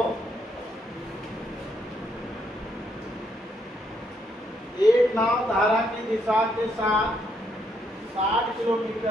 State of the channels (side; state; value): both; normal; correlation 0.74